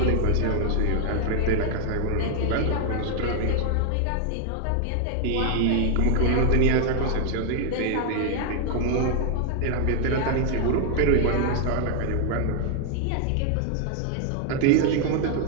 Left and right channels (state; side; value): different; both; correlation 0.00